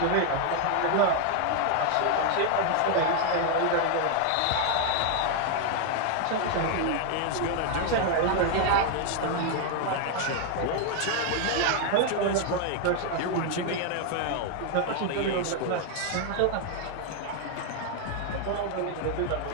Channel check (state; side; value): different; both; correlation 0.00